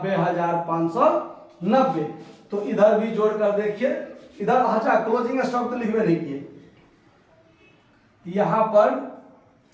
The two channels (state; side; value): identical; both; correlation 1.00